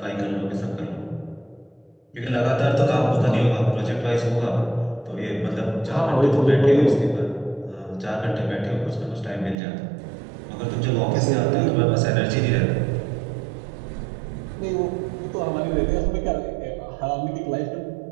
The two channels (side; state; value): left; drops out; at 9.6 s